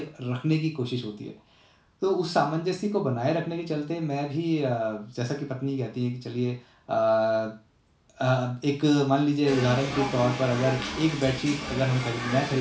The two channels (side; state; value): both; identical; correlation 1.00